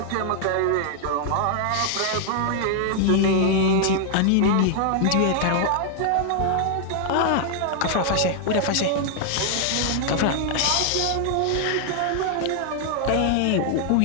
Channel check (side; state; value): both; different; correlation 0.00